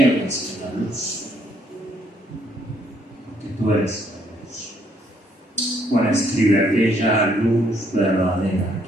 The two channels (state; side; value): normal; both; correlation 0.68